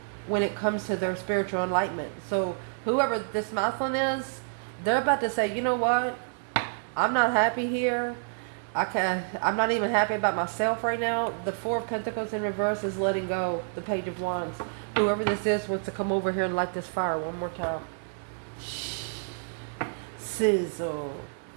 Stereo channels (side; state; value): left; silent; digital silence